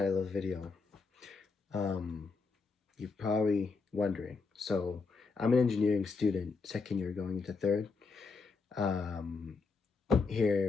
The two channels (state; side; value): quieter; right; 4.4 dB